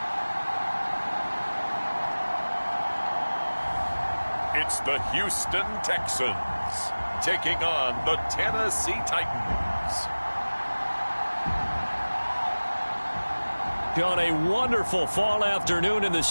It's the Houston Texans taking on the Tennessee Titans. On a wonderful fall afternoon in the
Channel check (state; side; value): inverted; both; correlation -1.00